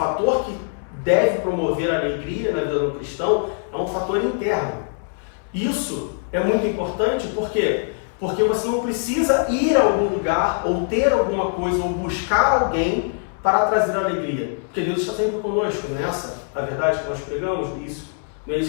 que deve promover a alegria na vida do cristão é um fator interno. Isso é muito importante, por quê? Porque você não precisa ir a algum lugar, ou ter alguma coisa, ou buscar alguém para trazer alegria. Porque Deus está sempre conosco, não é essa a verdade que nós pregamos? Isso, não é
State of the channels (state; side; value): silent; right; digital silence